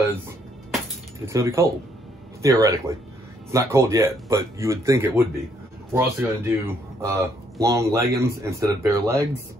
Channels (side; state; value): both; normal; correlation 0.70